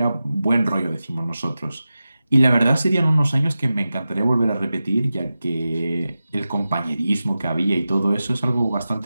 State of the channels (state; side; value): inverted; both; correlation -0.93